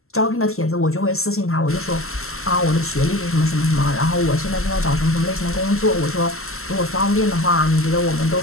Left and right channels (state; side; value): late; right; 0.63 ms